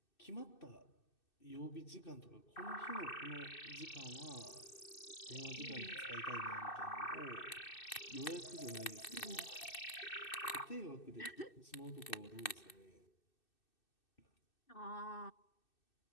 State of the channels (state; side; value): late; right; 2.6 ms